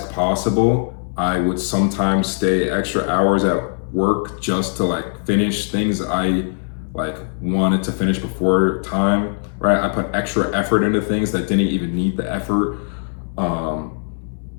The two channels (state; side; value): silent; right; 66 dB below the other